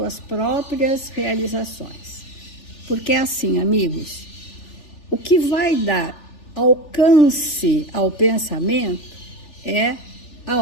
próprias realizações. Porque é assim, amigos, o que vai dar alcance ao pensamento é a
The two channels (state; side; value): late; right; 3.4 ms